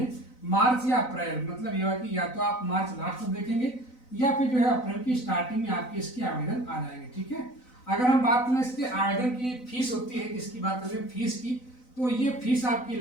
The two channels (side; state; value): right; late; 4.0 ms